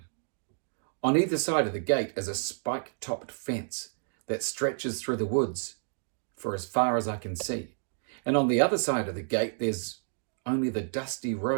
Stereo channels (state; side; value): silent; left; digital silence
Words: On either side of the gate is a spike-topped fence that stretches through the woods for as far as I can see. And on the other side of the gate, there's only the dusty